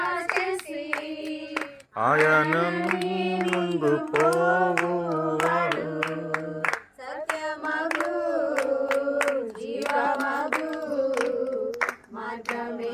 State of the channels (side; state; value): both; identical; correlation 1.00